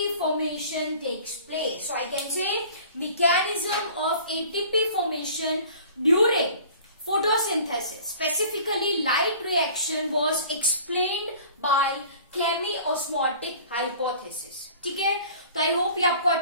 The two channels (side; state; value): both; inverted; correlation -0.47